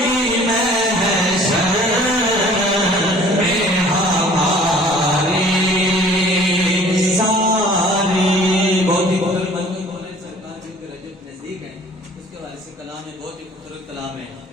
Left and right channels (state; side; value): normal; both; correlation 0.51